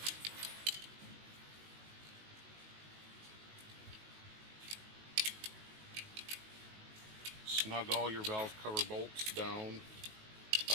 Snug all your valve cover bolts down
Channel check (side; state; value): left; late; 19 ms